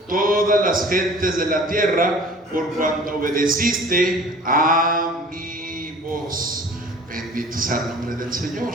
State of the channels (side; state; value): both; normal; correlation 0.46